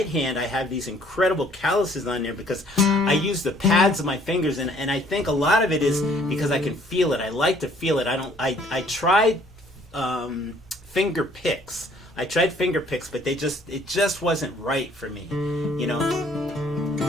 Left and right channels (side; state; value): both; normal; correlation 0.60